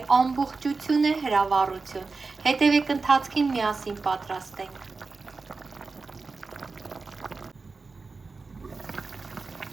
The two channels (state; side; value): quieter; left; 4.1 dB